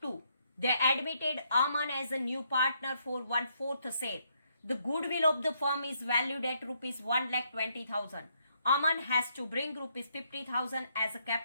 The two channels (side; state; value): both; inverted; correlation -0.73